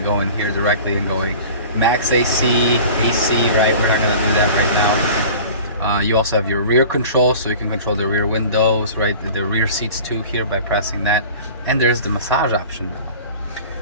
here directly and going max AC, right? We're not gonna do that right now. You also have your rear control, so you can control the rear windows, right? The rear seats too here by pressing that. And there's the massage option now,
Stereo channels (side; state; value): both; inverted; correlation -0.41